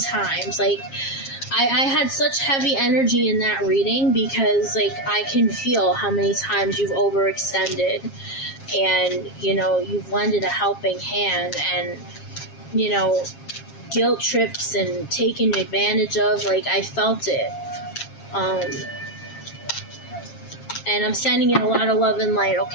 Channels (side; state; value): right; late; 7.4 ms